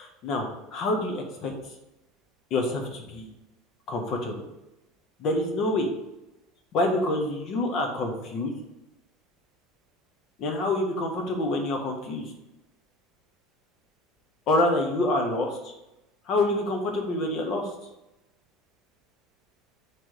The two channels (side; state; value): both; normal; correlation 0.39